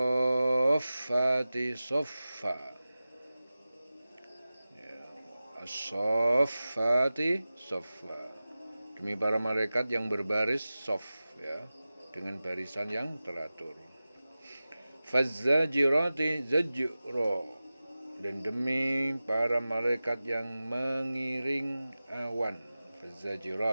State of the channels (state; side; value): inverted; both; correlation -0.96